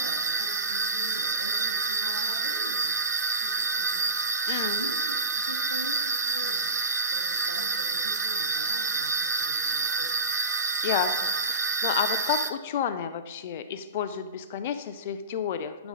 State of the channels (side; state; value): both; inverted; correlation -0.31